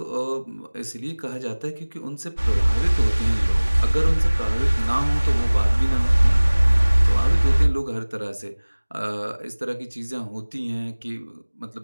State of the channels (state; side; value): inverted; both; correlation -1.00